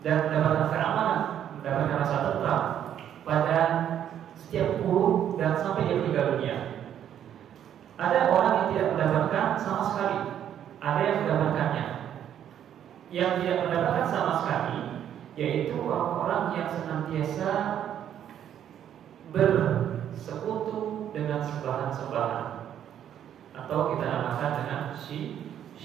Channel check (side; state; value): left; quieter; 10.0 dB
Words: dan mendapatkan keamanan, mendapatkan rasa tentram pada setiap buruk dan sampai dia meninggal dunia. Ada orang yang tidak mendapatkan sama sekali, ada yang mendapatkannya. Yang tidak mendapatkan sama sekali yaitu orang-orang yang senantiasa bersekutu dengan sembahan-sembahan, atau kita namakan dengan